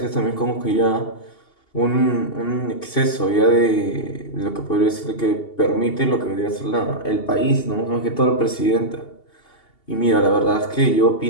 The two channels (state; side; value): late; right; 2.8 ms